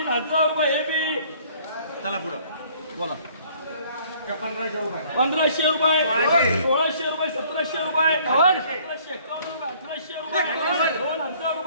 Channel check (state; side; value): inverted; both; correlation -0.58